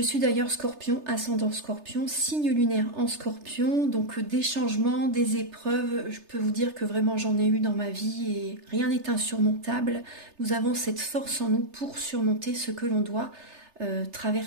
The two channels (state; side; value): late; left; 3.3 ms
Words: suis d'ailleurs scorpion, ascendant scorpion, signe lunaire en scorpion. Donc des changements, des épreuves, je peux vous dire que vraiment j'en ai eu dans ma vie et rien n'est insurmontable. Nous avons cette force en nous pour surmonter ce que l'on doit